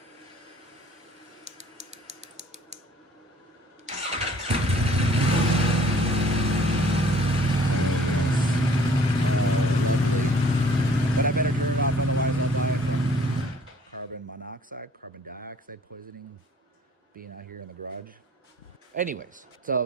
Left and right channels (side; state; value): both; normal; correlation 0.56